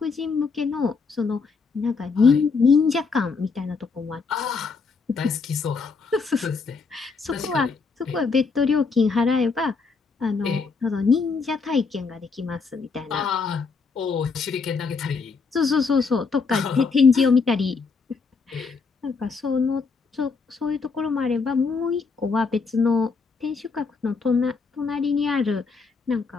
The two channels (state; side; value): quieter; right; 4.8 dB